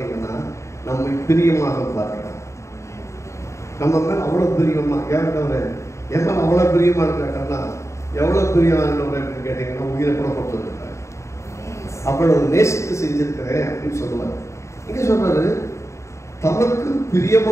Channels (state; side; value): late; right; 0.14 ms